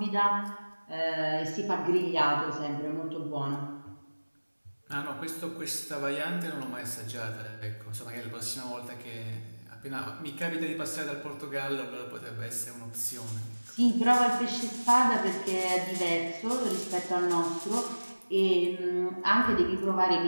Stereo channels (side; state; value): both; inverted; correlation -1.00